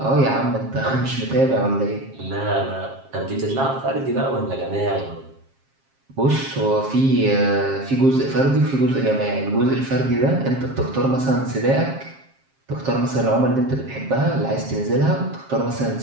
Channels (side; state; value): left; late; 7.4 ms